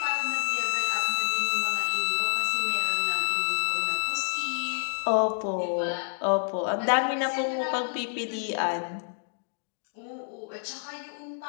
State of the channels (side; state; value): right; silent; digital silence